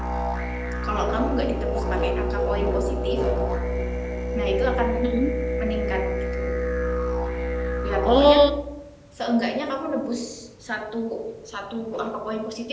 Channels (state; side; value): identical; both; correlation 1.00